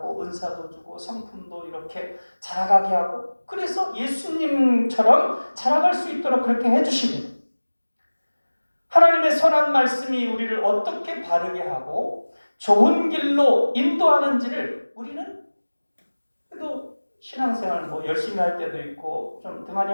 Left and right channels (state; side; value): inverted; both; correlation -1.00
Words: 은사도 주고 성품도 이렇게 자라가게 하고 그래서 예수님처럼 자라갈 수 있도록 그렇게 해주십니다. 하나님의 선한 말씀이 우리를 어떻게 바르게 하고 좋은 길로 인도하는지를 우리는 그래도 신앙생활 열심히 할 때도 있고 좀 등한히